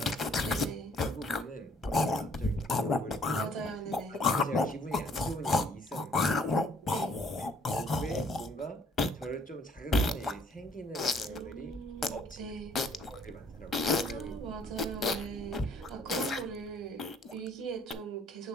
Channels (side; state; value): both; normal; correlation 0.62